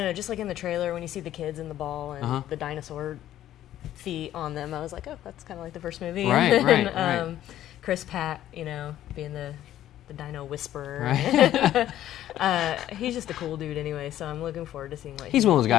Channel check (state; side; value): quieter; right; 12.6 dB